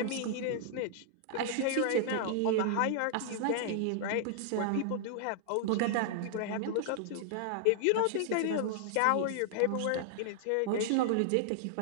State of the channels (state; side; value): different; both; correlation -0.01